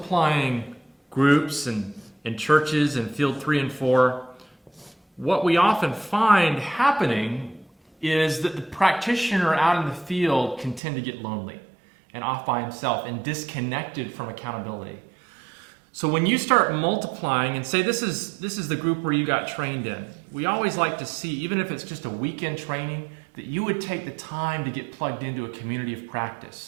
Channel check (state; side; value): drops out; left; at 10.8 s